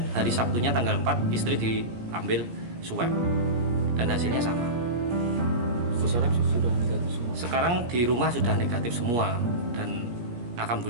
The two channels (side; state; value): left; late; 17 ms